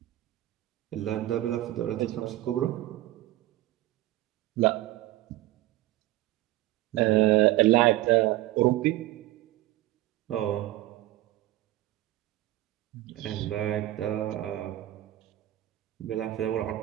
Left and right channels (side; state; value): left; quieter; 15.9 dB